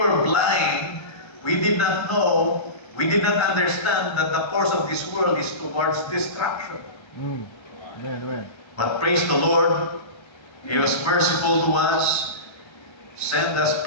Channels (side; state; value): right; late; 1.3 ms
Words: blind. We did not know. We did not understand that the course of this world is towards destruction. Amen. But praise the Lord, He was merciful to us, sent us